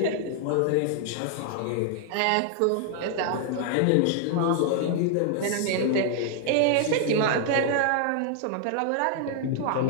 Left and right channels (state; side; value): different; both; correlation 0.00